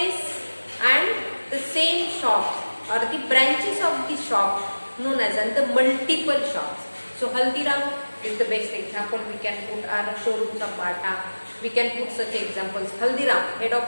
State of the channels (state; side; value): inverted; both; correlation -1.00